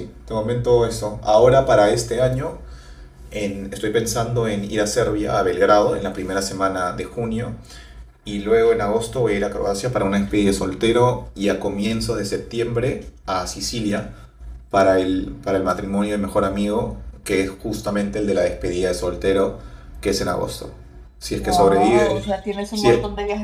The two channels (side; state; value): both; identical; correlation 1.00